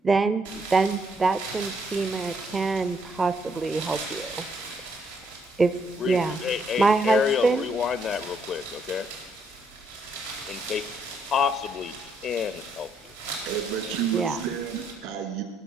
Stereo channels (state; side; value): normal; both; correlation 0.72